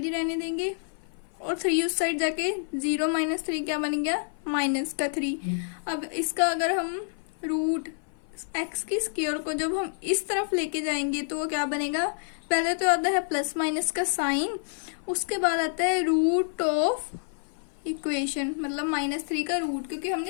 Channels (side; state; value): right; silent; 56 dB below the other